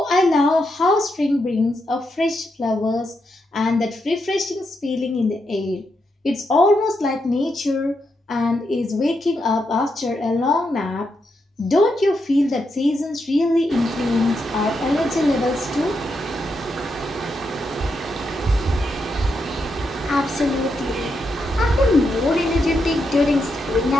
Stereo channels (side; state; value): both; normal; correlation 0.83